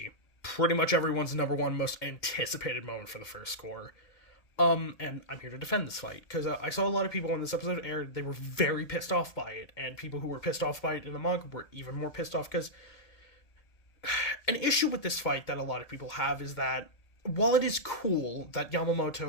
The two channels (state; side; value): late; right; 2.1 ms